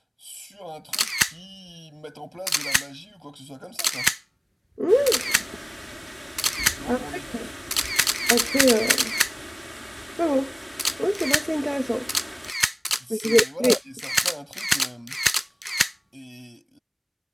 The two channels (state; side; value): identical; both; correlation 1.00